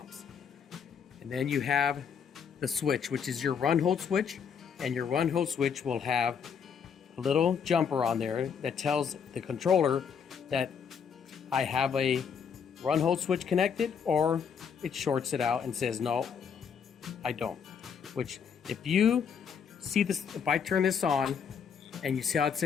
And then you have the switch, which is your run hold switch, and your run hold switch will have a little jumper on there that tells the controller that I have a run hold switch connected, or it shorts it out and says no, I don't. Which, if you see this, if I turn this on and you see how it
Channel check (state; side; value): quieter; right; 7.0 dB